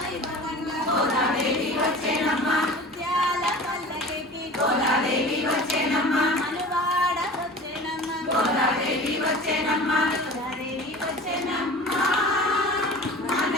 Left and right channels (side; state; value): both; normal; correlation 0.38